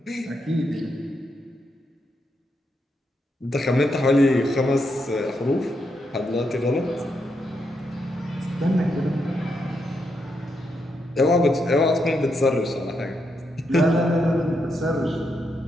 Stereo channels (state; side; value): normal; both; correlation 0.81